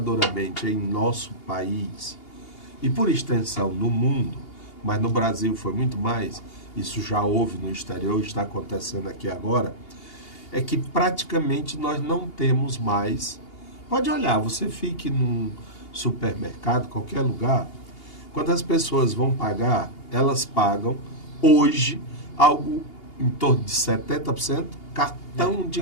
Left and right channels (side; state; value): right; late; 2.8 ms